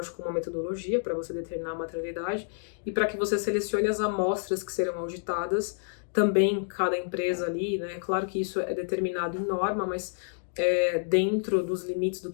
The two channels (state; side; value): silent; right; digital silence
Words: uma metodologia para você determinar a materialidade, e para que você selecione as amostras que serão auditadas, também cada empresa ali, né, claro que isso é determinado em norma, mas dentro dos limites do